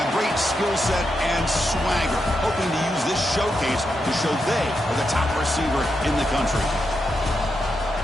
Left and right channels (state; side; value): normal; both; correlation 0.85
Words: great skill set and swagger, hoping to use this showcase to show they are the top receiver in the country.